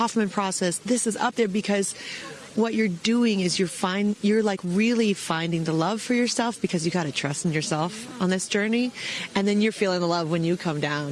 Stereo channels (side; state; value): both; identical; correlation 1.00